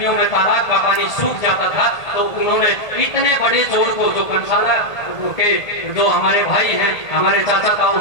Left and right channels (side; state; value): right; late; 1.8 ms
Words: में तालाब का पानी सूख जाता था तो उन्होंने इतने बड़े जोड़ को, जो कंसाला के जो हमारे भाई हैं, हमारे चाचा ताऊ,